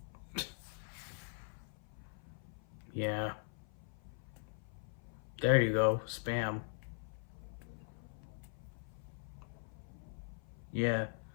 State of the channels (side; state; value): right; silent; 50 dB below the other